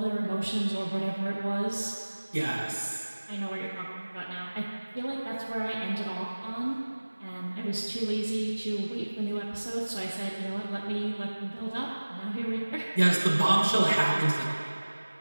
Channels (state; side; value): inverted; both; correlation -1.00